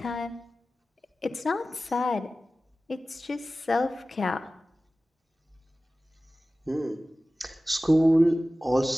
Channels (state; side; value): normal; both; correlation 0.96